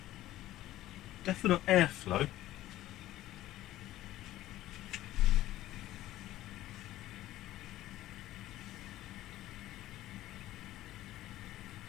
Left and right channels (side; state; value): right; quieter; 14.9 dB